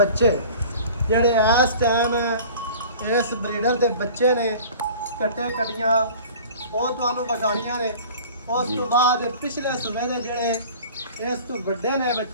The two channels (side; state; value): both; inverted; correlation -0.43